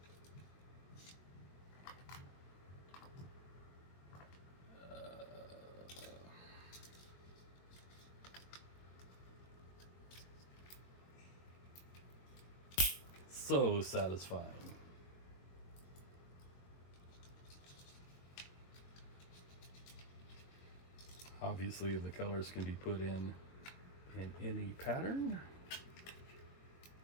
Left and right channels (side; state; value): right; late; 22 ms